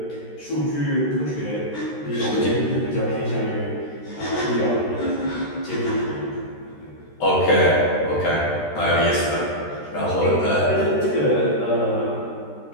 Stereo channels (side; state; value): right; late; 13 ms